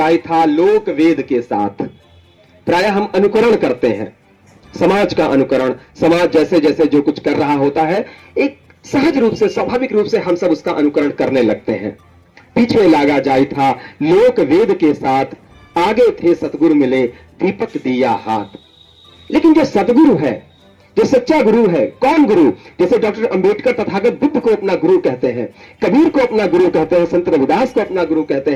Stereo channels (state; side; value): identical; both; correlation 1.00